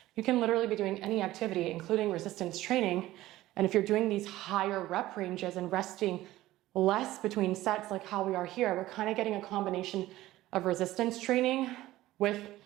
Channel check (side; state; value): left; quieter; 16.1 dB